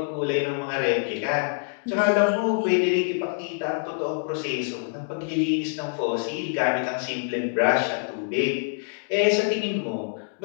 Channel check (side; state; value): right; silent; digital silence